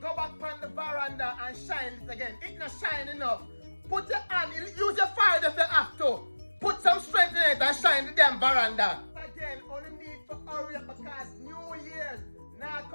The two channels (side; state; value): both; inverted; correlation -1.00